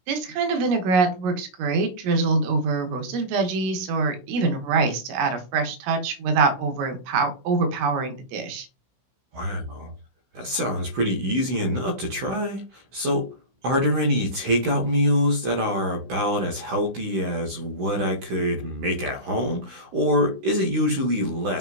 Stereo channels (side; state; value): left; late; 16 ms